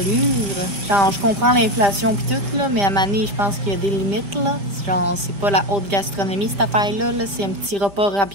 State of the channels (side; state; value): left; late; 5.0 ms